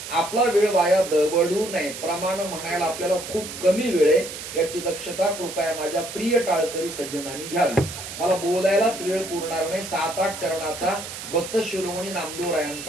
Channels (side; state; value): right; noise; hiss, 10 dB below the sound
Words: आपला वेळ वाया दवडू नये. प्रमाण म्हणायला आपल्याला खूप कमी वेळ आहे, याची दक्षता कृपया माझ्या प्रिय टाळकरी सज्जनांनी घ्यावी. मला बोलायलाच वेळ पुरणार नाही. 7-8 चरणाचा भक्त शिरोमणी